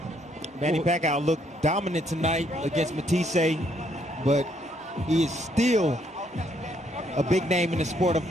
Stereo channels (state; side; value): normal; both; correlation 0.70